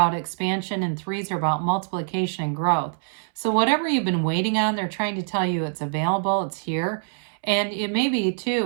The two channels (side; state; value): left; silent; 62 dB below the other